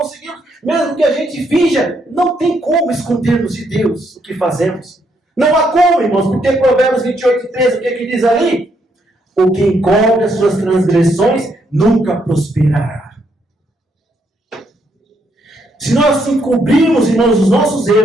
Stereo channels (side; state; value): both; normal; correlation 0.74